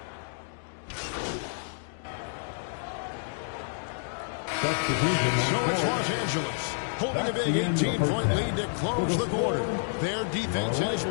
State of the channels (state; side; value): silent; right; digital silence